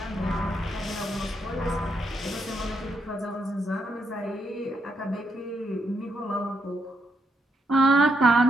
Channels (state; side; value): normal; both; correlation 0.78